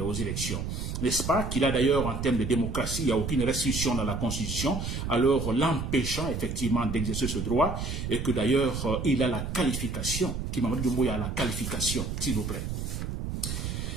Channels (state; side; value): noise; right; rumble, 4 dB below the sound